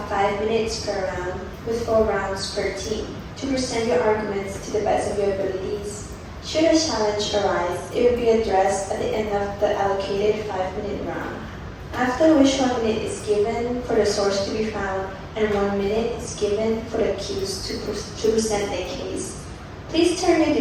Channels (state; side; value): identical; both; correlation 1.00